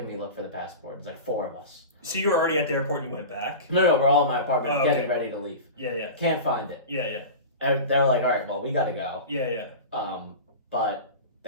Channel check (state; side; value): inverted; both; correlation -0.30